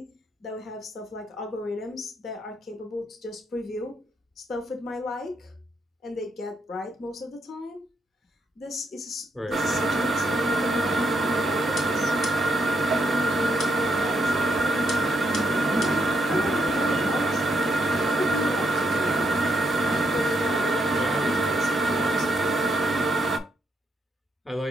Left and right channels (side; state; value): both; normal; correlation 0.77